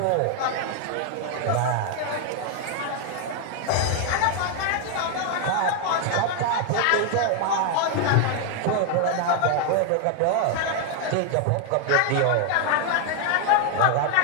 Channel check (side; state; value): both; different; correlation 0.00